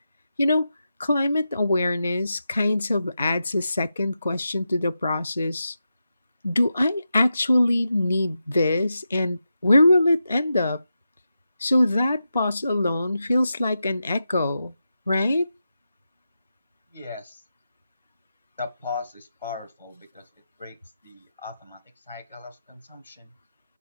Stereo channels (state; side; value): inverted; both; correlation -0.89